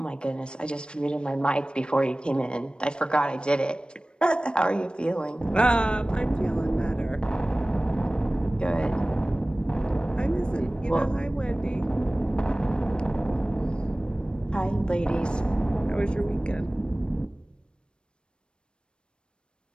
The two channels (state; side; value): late; right; 0.053 ms